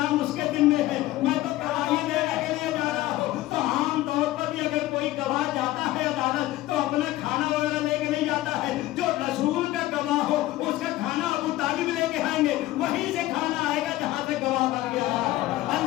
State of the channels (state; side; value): quieter; right; 16.4 dB